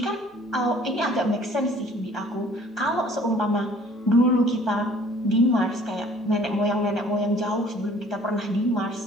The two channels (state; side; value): normal; both; correlation 0.54